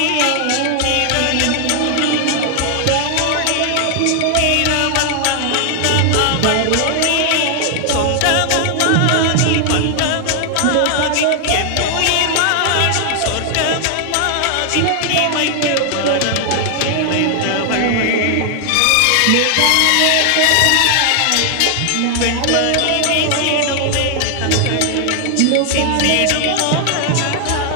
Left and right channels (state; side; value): different; both; correlation 0.00